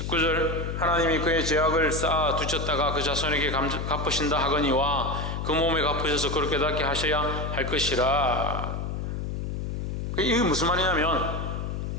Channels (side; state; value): left; noise; hum, 4 dB below the sound